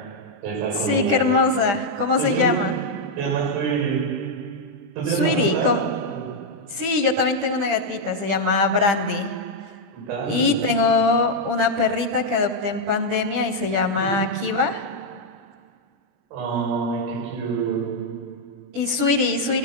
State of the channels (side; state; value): left; late; 20 ms